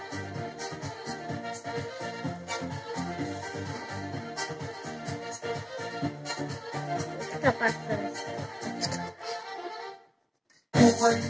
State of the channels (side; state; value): both; identical; correlation 1.00